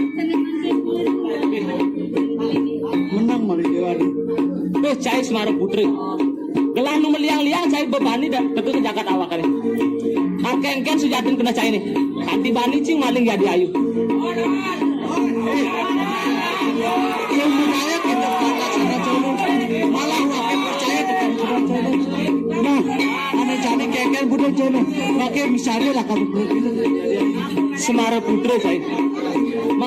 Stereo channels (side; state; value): both; identical; correlation 1.00